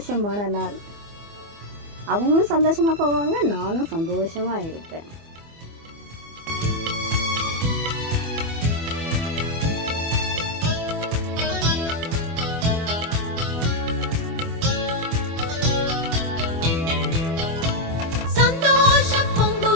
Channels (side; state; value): left; late; 24 ms